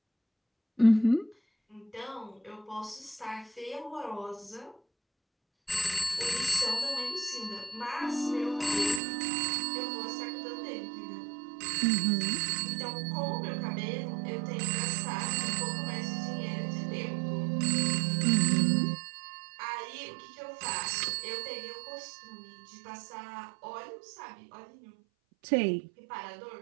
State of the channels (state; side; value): drops out; left; at 9.0 s